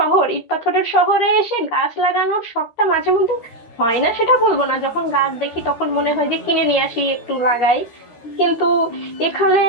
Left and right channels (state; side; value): late; right; 12 ms